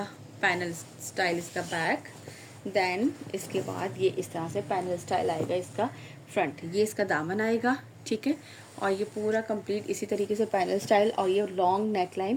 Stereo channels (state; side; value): identical; both; correlation 1.00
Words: पैनल स्टाइल इसका बैक। देन इसके बाद ये इस तरह से पैनल स्टाइल आएगा इसका फ्रंट। ये इसका दामन आएगा। ठीक है, और ये पूरा कंप्लीट इसी तरीके से पैनल स्टाइल और ये लॉन्ग नेक